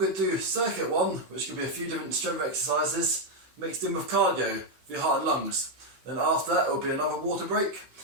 to do circuit one, which could be a few different strength exercises mixed in with cardio for your heart and lungs. Then after that it will be another water break.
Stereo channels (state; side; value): late; left; 16 ms